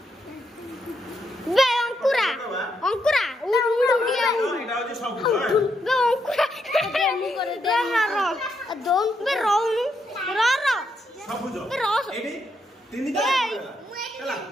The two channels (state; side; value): normal; both; correlation 0.79